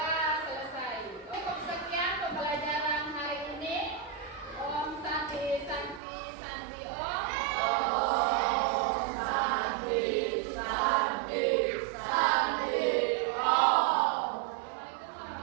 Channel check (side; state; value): left; drops out; at 6.0 s